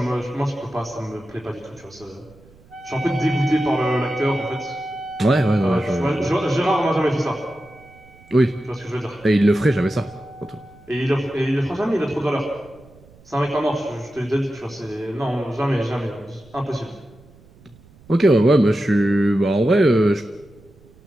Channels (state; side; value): noise; right; rumble, 26 dB below the sound